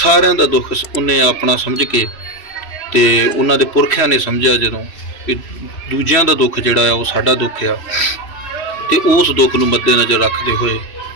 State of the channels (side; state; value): right; late; 3.1 ms